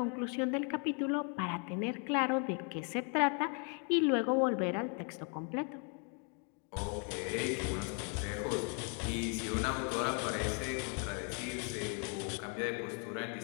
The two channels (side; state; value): right; quieter; 39.2 dB